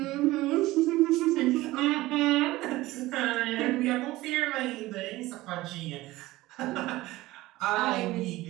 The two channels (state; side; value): quieter; left; 18.1 dB